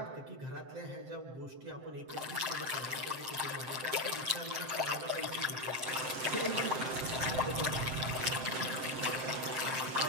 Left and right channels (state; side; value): late; left; 7.7 ms